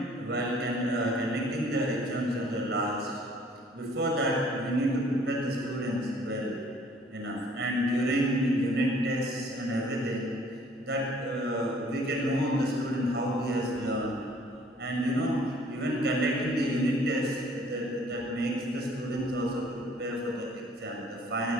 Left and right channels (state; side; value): normal; both; correlation 0.57